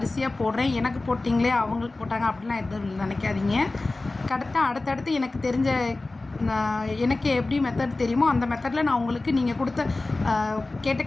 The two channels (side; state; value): right; quieter; 3.2 dB